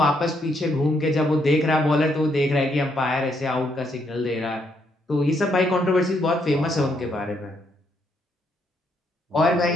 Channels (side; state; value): both; normal; correlation 0.74